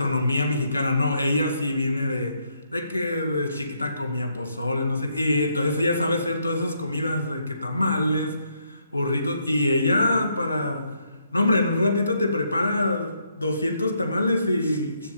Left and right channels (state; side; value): inverted; both; correlation -0.74